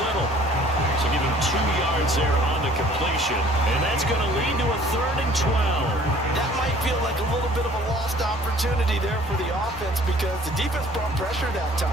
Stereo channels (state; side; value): normal; both; correlation 0.54